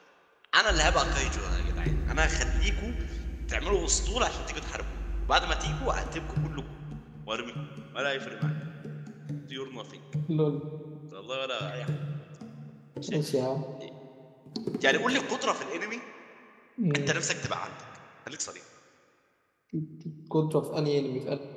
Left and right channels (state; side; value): identical; both; correlation 1.00